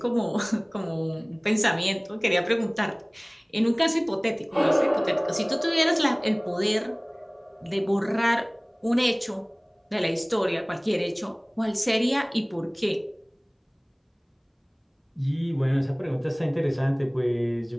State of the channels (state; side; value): identical; both; correlation 1.00